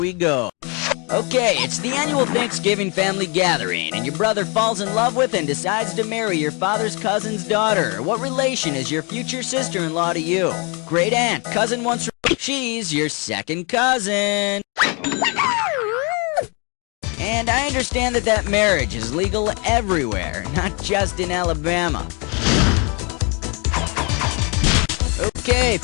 go. Okay, it's the annual Thanksgiving family gathering, and your brother falls in love with and decides to marry your father's cousin's daughter. What relation is your future sister-in-law to you? Great aunt, cousin once removed. She's your second cousin. And I understand that marriage is legal everywhere, not just in Alabama. Okay,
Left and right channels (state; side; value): quieter; right; 32.3 dB